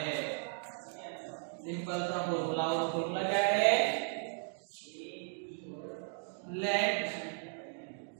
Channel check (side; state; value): left; silent; 54 dB below the other